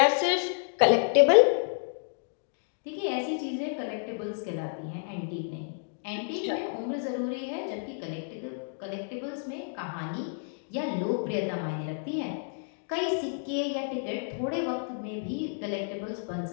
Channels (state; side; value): silent; right; digital silence